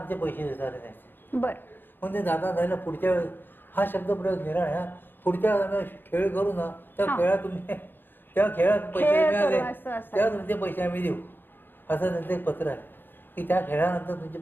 पैसे देता आले नाही. बरं. म्हणजे दादा जायला पुढच्या वेळेस हा शब्द प्रयोग निराळ आहे, पुढच्या खेळ करू ना, त्या खेळात तुम्ही त्या खेळात पैसे मिळाले तेव्हा तुमचे पैसे आम्ही देऊ, असं त्यांचं एक पत्र आहे की त्या खेळानंतर तुमचे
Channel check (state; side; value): late; right; 0.096 ms